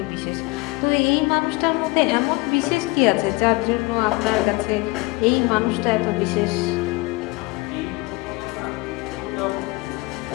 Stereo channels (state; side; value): quieter; right; 23.5 dB